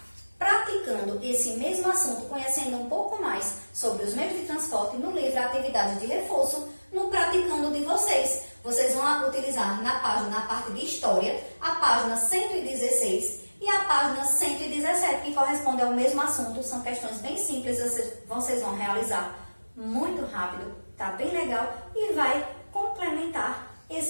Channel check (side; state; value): both; inverted; correlation -1.00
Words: praticando esse mesmo assunto, conhecendo um pouco mais sobre os meios de transporte no livro Atividade de Reforço, no Praticando de vocês. Vocês vão utilizar na parte de História, a página 116 e a página 117, que corresponde ao mesmo assunto. São questões bem simples, vocês vão realizar muito rápido, tá bem legal e vai complementar